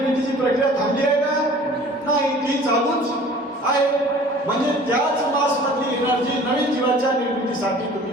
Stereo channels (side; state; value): both; normal; correlation 0.47